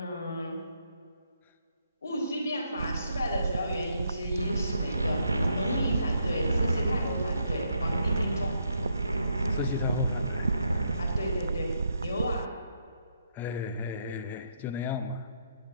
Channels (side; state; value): both; inverted; correlation -0.76